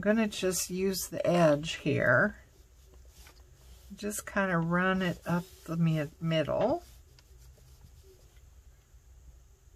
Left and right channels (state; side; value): identical; both; correlation 1.00